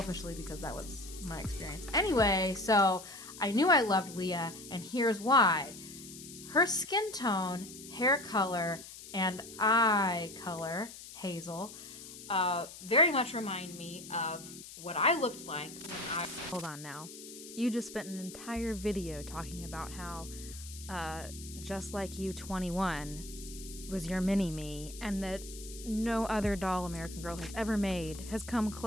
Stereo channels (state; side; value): noise; left; hiss, 14 dB below the sound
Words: because that was my experience. Anyway, so I knew I loved Leah, and here's why. Her skin tone, hair color, and eye color, hazel, very much remind me of what I looked like when I... Hold on now. You just spent an entire video talking about how Just Like You 21 was your mini-me, and that no other doll American Girl has ever made has come